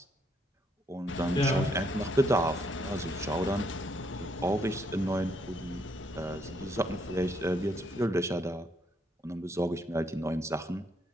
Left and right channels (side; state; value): both; normal; correlation 0.72